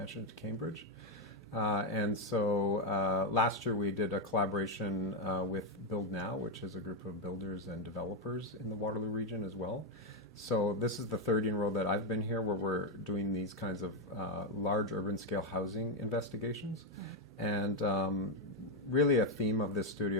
to Cambridge. And so last year we did a collaboration with Build Now, which is a group of builders and developers in the Waterloo region as well. So this is the third year in a row that I've been here where we're doing these kinds of large urban scale housing investigations. And really a theme of this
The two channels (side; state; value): both; normal; correlation 0.03